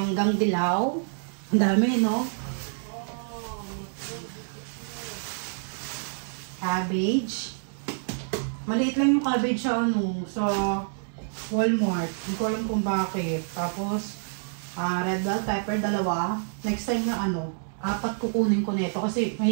dilaw. Ang dami, no? Cabbage. Maliit lang yung cabbage sa sa Walmart. Hindi ko alam kung bakit. Tapos, red bell pepper, 2. Next time na 4 kukunin ko nito kasi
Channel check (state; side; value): silent; left; digital silence